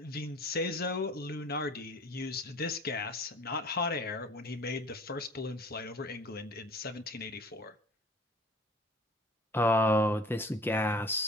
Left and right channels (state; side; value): normal; both; correlation 0.46